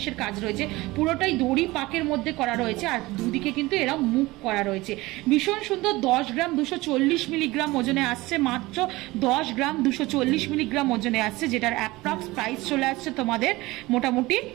কাজ রয়েছে, পুরোটাই দড়ি পাকের মধ্যে করা রয়েছে। আর দুদিকে কিন্তু এরা মুখ করা রয়েছে, ভীষণ সুন্দর। 10 গ্রাম 240 মিলিগ্রাম ওজনে আসছে, মাত্র 10 গ্রাম 240 মিলিগ্রাম ওজনে আসছে, যেটার অ্যাপ্রক্স প্রাইস চলে আসছে তোমাদের মোটামুটি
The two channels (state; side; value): quieter; left; 20.4 dB